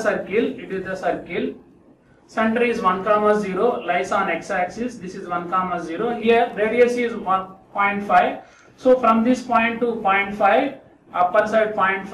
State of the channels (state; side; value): identical; both; correlation 1.00